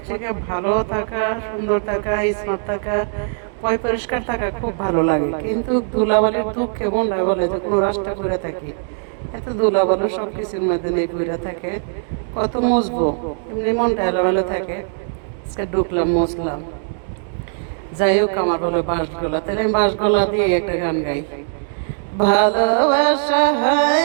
থেকে ভালো থাকা, সুন্দর থাকা, স্মার্ট থাকা, পরিষ্কার থাকা খুব ভালো লাগে, কিন্তু ধুলাবালির দুঃখ কেমন লাগে বলে যে কোনো রাস্তা করে থাকি, এত ধুলাবালু সব কিছুর মধ্যে নেই পড়ে থাকে, কত মুছবো, এমনি মনটা এলোমেলো থাকে। আজকে ঢুকলাম, মুছলাম। যাই হোক, আমার বলে বাঁশগোলা, তাহলে আমি বাঁশগোলা দিয়ে একটা গান গাই। ভালোবাসা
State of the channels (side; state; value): left; silent; digital silence